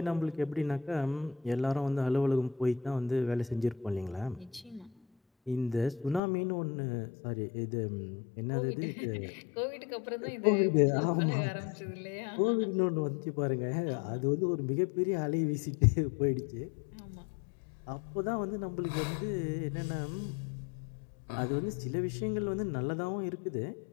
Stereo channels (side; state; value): right; drops out; at 6.2 s